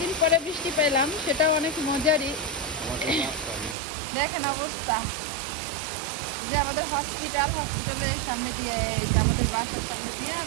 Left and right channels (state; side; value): drops out; left; at 3.8 s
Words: পরে বৃষ্টি পেলাম, সেটাও অনেক মজারই। দেখেন অবস্থা, যে আমাদের হসপিটালের সামনে দিয়ে, এই যে আমাদের বাসার সামনে দিয়ে